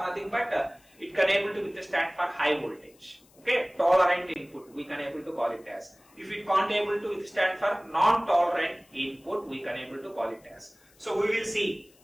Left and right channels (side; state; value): left; noise; hiss, 30 dB below the sound